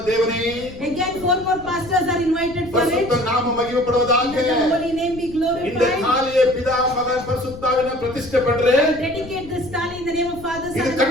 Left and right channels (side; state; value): left; noise; rumble, 16 dB below the sound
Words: ದೇವನೇ, Again 4 more pastors are invited for it. ಪರಿಶುದ್ಧ ನಾಮ ಮಹಿಮೆ Let ಪಡುವುದಾಗೆ the holy name be இந்த glorified. தாலியை பிதா மகன் பரிசுத்தாவின பிரதிஷ்ಠೆ பண்றே. Dedicate this tali in the name of Father, Son, இது and